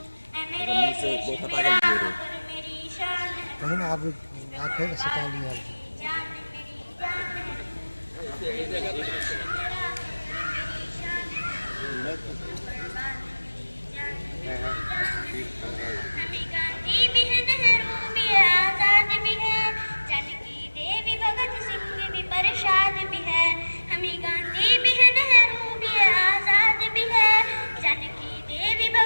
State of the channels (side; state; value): both; inverted; correlation -1.00